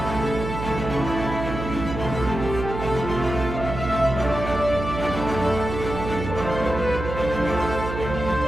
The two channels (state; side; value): noise; right; hum, 6 dB below the sound